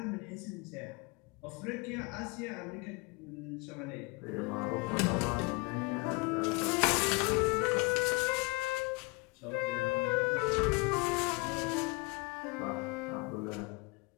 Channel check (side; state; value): right; quieter; 28.3 dB